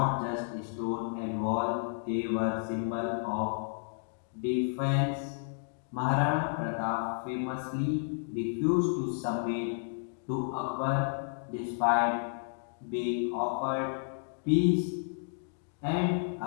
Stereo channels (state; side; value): silent; right; digital silence